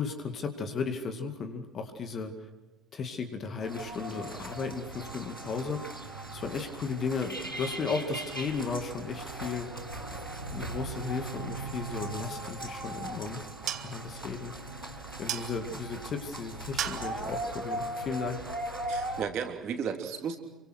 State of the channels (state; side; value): normal; both; correlation 0.47